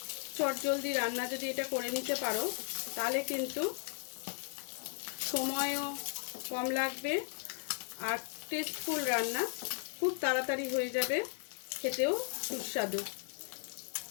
চটজলদি রান্না যদি এটা করে নিতে পারো তাহলে কিন্তু সময়ও কম লাগবে আর টেস্টফুল রান্না খুব তাড়াতাড়ি হয়ে যাবে, খেতেও সুস্বাদু।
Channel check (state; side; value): silent; right; 54 dB below the other